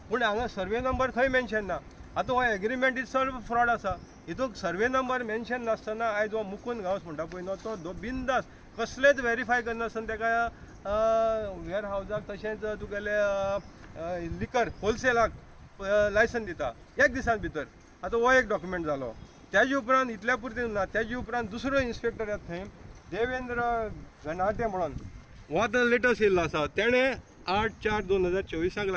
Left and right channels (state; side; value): identical; both; correlation 1.00